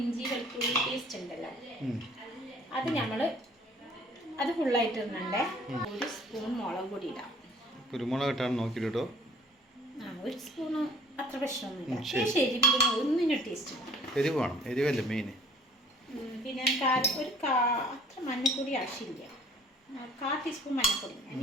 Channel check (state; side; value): normal; both; correlation 0.54